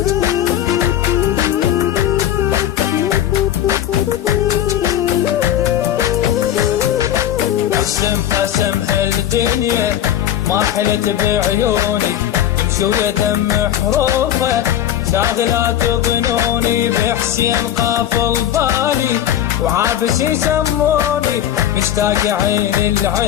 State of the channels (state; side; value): quieter; right; 11.3 dB